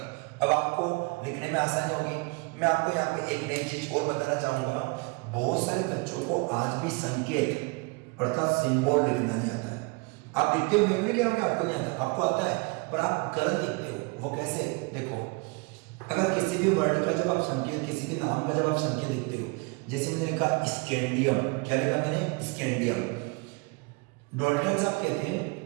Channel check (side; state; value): left; quieter; 28.7 dB